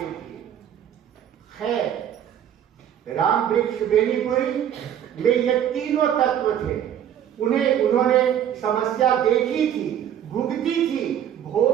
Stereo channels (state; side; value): quieter; left; 10.0 dB